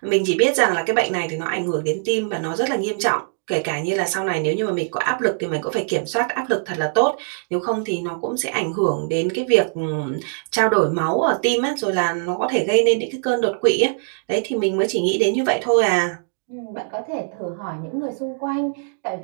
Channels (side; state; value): left; silent; digital silence